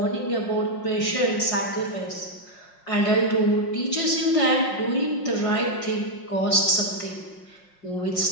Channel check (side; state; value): right; late; 5.5 ms